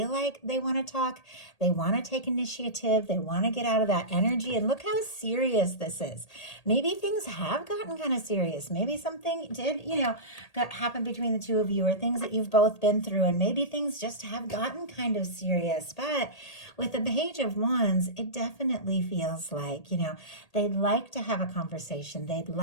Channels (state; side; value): late; right; 1.8 ms